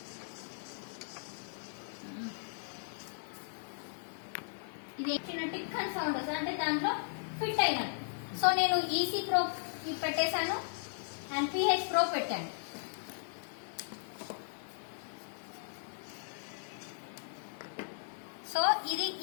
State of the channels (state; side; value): silent; right; digital silence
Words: ఇది చిన్న టిక్ అని సౌండ్ వస్తుంది, అంటే దాంట్లో ఫిట్ అయినట్టు. సో నేను ఈసీ ప్రోబ్ పెట్టేశాను అండ్ పిహెచ్ ప్రోబ్ పెట్టాను. సో ఇది